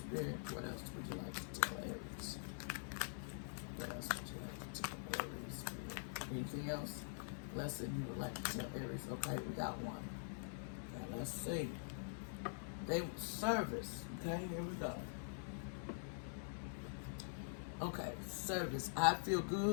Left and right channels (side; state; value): right; silent; digital silence